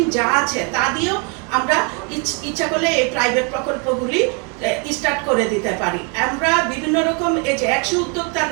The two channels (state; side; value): quieter; left; 35.1 dB